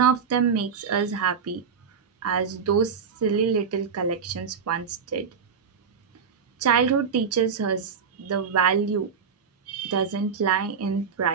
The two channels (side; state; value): left; quieter; 6.2 dB